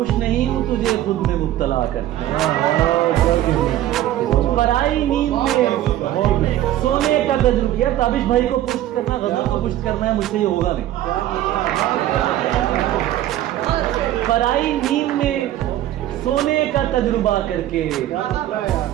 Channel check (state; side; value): quieter; left; 13.3 dB